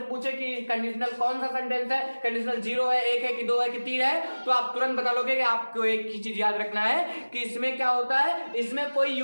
पूछे कि कंडीशनल कौन सा सेंटेंस है, कंडीशनल 0 है, 1 है कि 2 है कि 3 है, तो आप तुरंत बता लोगे कि आपको एक ही चीज याद रखना है कि इसमें क्या होता है, इसमें कोई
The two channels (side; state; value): both; inverted; correlation -1.00